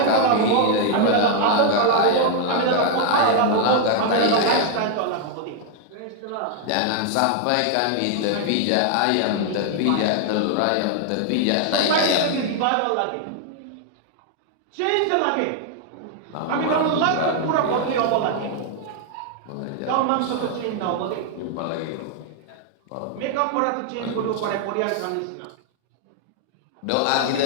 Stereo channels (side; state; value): both; different; correlation 0.00